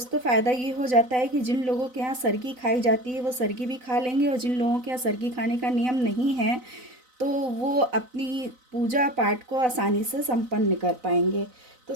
फ़ायदा ये हो जाता है कि जिन लोगों के यहाँ सरगी खाई जाती है वो सरगी भी खा लेंगे, और जिन लोगों के यहाँ सरगी खाने का नियम नहीं है तो वो अपनी पूजा पाठ को आसानी से संपन्न कर पाएंगे। तो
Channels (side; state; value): left; late; 4.0 ms